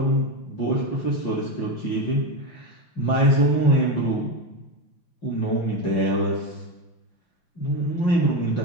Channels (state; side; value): late; right; 5.9 ms